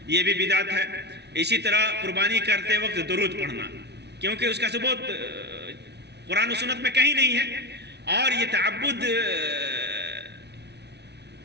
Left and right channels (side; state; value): left; late; 0.49 ms